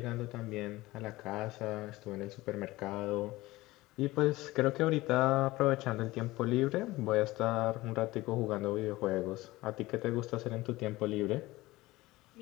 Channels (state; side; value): quieter; right; 19.0 dB